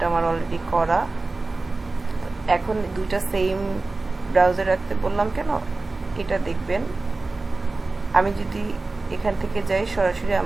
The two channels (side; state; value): left; quieter; 3.4 dB